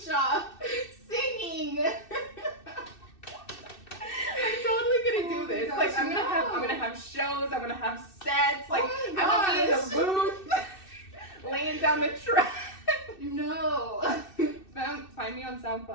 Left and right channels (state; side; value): late; right; 2.6 ms